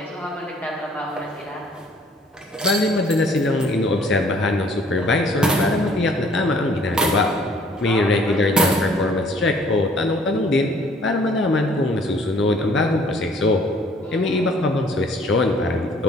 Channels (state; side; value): normal; both; correlation 0.58